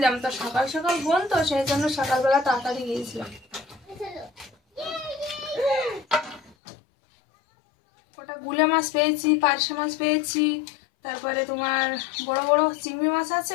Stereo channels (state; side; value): drops out; right; at 6.6 s